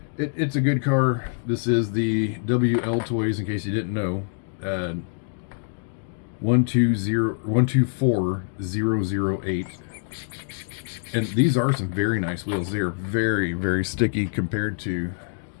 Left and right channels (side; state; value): right; silent; digital silence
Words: It's a good car. This is the Wltoys, in case you didn't know. 124008. And these are some very nice wheels. They are very, very sticky compared to